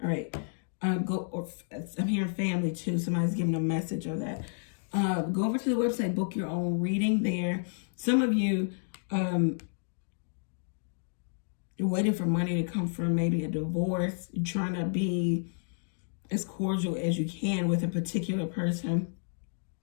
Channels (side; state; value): right; silent; digital silence